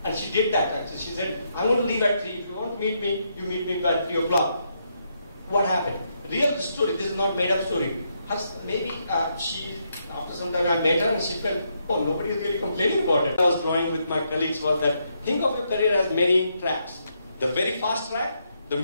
And she did that actually. She said, I'm going to leave at 3. If you want to meet me, you meet me by 3 o'clock. What happened? Real story, this is not made up story. Maybe after some time I met her and she felt, oh, nobody is really complaining about it. I was drawing with my colleagues was that, think of your career as many tracks. The very fast track, the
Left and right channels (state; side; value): inverted; both; correlation -0.78